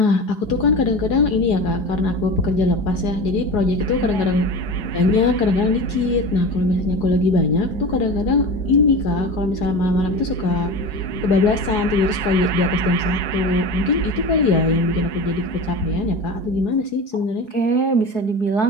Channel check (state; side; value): late; right; 4.8 ms